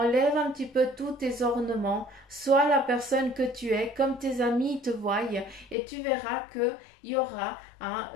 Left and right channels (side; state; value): right; drops out; at 5.8 s